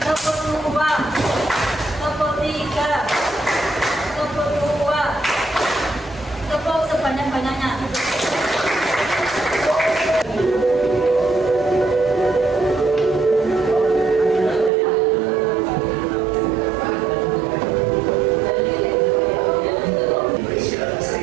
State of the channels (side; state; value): left; drops out; at 14.7 s